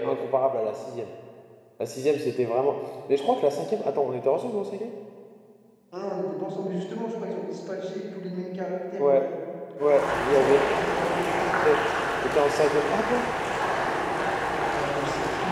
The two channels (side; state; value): both; identical; correlation 1.00